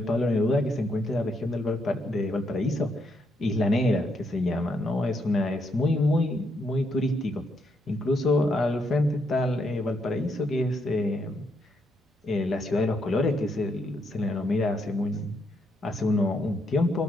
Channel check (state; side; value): normal; both; correlation 0.77